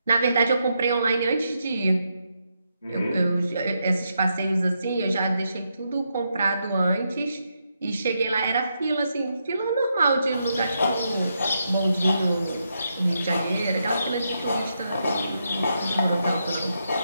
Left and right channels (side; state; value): both; inverted; correlation -0.82